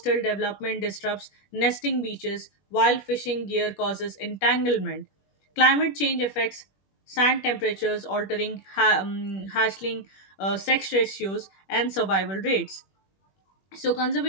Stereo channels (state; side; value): late; right; 21 ms